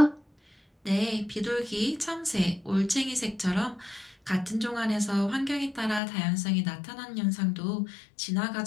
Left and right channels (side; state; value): right; drops out; at 6.0 s